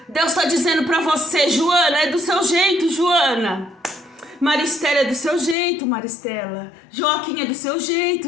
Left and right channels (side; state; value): right; drops out; at 5.6 s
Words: Deus está dizendo para você, Joana, é do seu jeito, Joana. Maristela é do seu jeito, Maristela. Joaquim é do seu jeito,